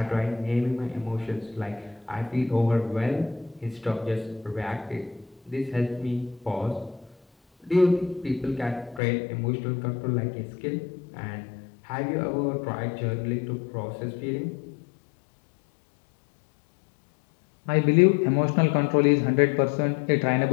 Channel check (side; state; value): right; drops out; at 9.0 s